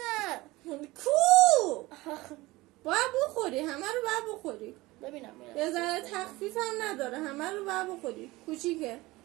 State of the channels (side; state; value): left; quieter; 20.2 dB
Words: کو باید بخوری، همه رو باید بخوری. ببینم یه ذره تخفیف هم نداره، همه رو باید بخوری. کوچیکه